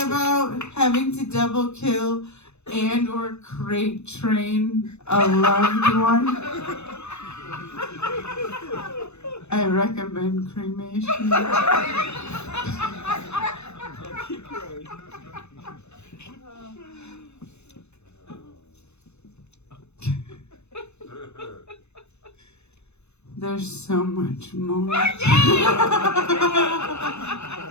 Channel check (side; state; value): right; late; 0.81 ms